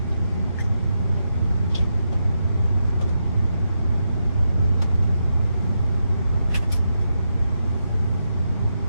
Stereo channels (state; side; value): inverted; both; correlation -0.85